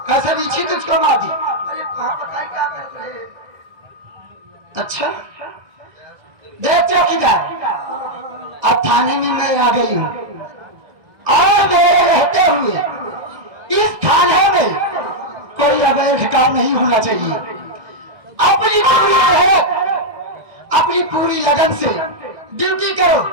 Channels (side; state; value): left; late; 2.0 ms